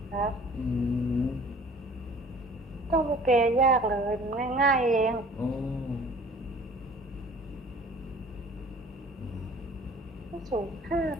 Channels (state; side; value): normal; both; correlation 0.49